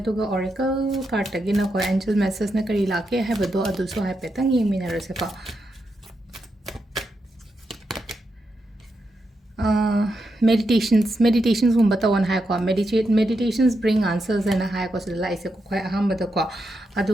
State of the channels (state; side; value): normal; both; correlation 0.84